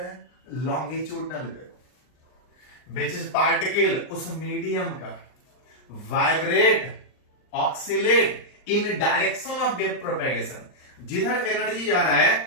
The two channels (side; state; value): right; late; 39 ms